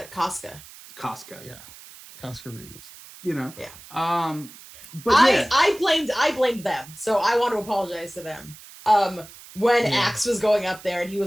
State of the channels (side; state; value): right; noise; hiss, 19 dB below the sound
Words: Casca. Yeah, Casca Reeves. Yeah. But I blamed them, so I want to apologize to them. When Axe was going up there and he